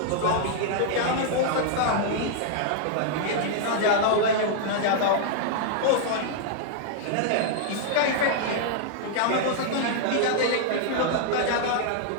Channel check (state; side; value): different; both; correlation -0.01